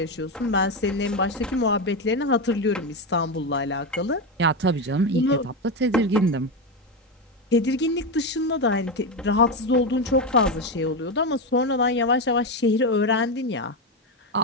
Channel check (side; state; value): both; normal; correlation 0.12